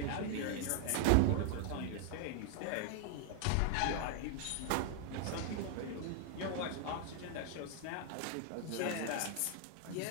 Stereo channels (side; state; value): both; different; correlation 0.00